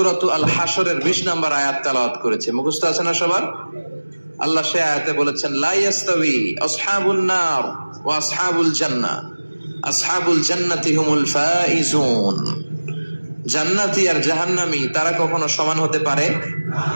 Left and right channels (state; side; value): inverted; both; correlation -1.00